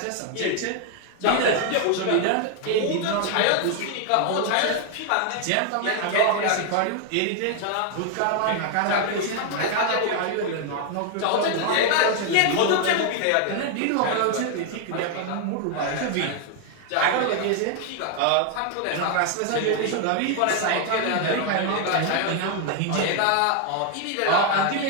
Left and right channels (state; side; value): different; both; correlation 0.00